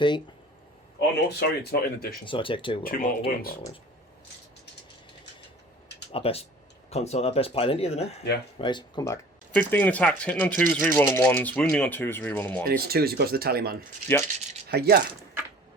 Oh no, sorry, it's not in addition. So I take 2. 2 mortal wounds. I best pile into you then, eh? Yeah. Right, come back. 15 attacks, hitting on 2s, rerolling 1s, wounding on 2s, rerolling 1s. And it's 2s because of the tally man. Yep. Hiya!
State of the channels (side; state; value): both; normal; correlation 0.46